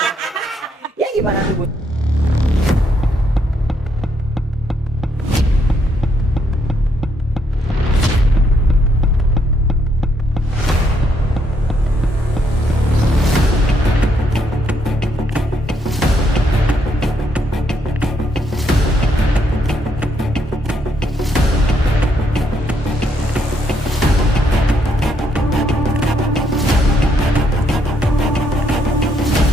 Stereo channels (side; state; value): both; normal; correlation 0.74